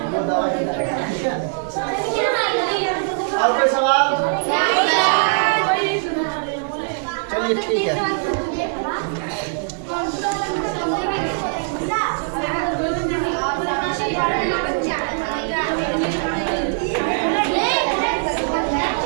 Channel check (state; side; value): silent; left; digital silence